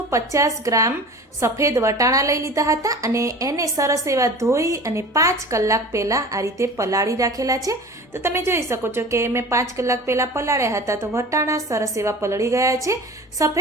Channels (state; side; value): normal; both; correlation 0.38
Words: ગ્રામ સફેદ વટાણા લઈ લીધા હતા અને એને સરસ એવા ધોઈ અને 5 કલાક પહેલાં આ રીતે પલાળી રાખેલા છે. તો તમે જોઈ શકો છો કે મેં 5 કલાક પહેલાં પલાળ્યા હતા તો વટાણા સરસ એવા પલળી ગયા છે.